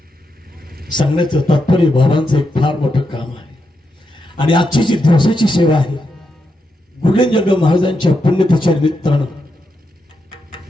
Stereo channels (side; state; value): both; normal; correlation 0.84